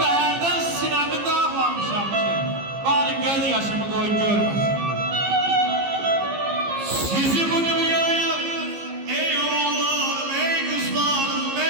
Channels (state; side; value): late; left; 15 ms